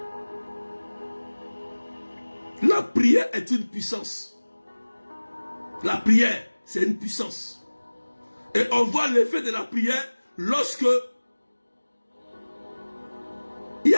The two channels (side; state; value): both; inverted; correlation -1.00